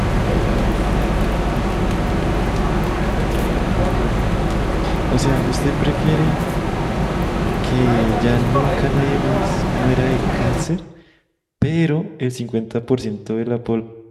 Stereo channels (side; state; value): both; identical; correlation 1.00